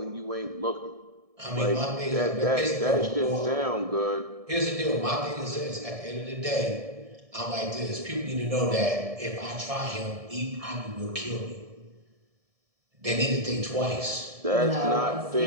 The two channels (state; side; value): late; left; 1.7 ms